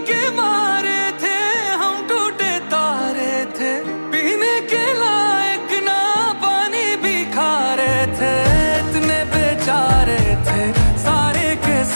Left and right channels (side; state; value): both; inverted; correlation -1.00